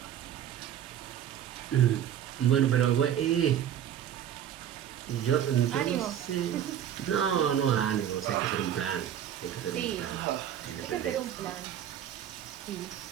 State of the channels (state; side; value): quieter; left; 10.3 dB